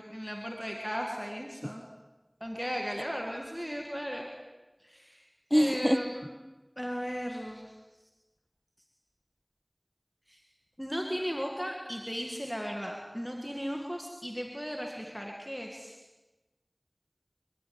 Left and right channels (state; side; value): identical; both; correlation 1.00